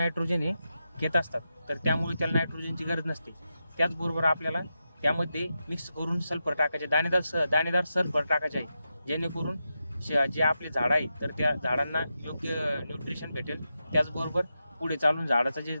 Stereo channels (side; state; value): both; inverted; correlation -0.88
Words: हे घेत असतात. तर त्यामुळे त्याला नायट्रोजनची गरज नसते. त्याचबरोबर आपल्याला त्यामध्ये मिक्स करून सल्फर टाकायचे, दाणेदार सल्फर टाकायचे आहे, जेणेकरून जे आपले झाड आहे तर त्या झाडांना योग्य न्यूट्रिशन भेटेल. त्याचबरोबर पुढे चालून झाडाचे जे